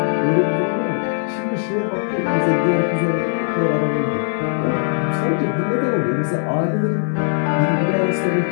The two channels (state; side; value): silent; right; 61 dB below the other